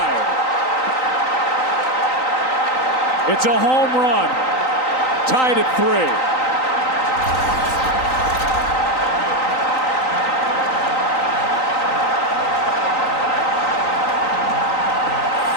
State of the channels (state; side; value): late; right; 3.9 ms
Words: It's a home run. Tied at 3.